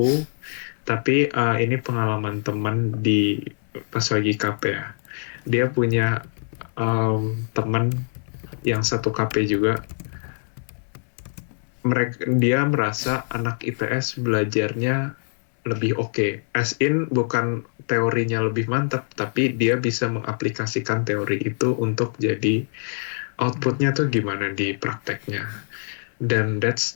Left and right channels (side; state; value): right; silent; digital silence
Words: tapi ini pengalaman teman di pas lagi KP ya. Dia punya teman yang satu KP juga. Dia merasa anak IPS belajarnya lebih oke. As in, bukan teorinya lebih mantap, tapi dia bisa mengaplikasikan teori itu untuk jadi outputnya tuh gimana di prakteknya. Dan that's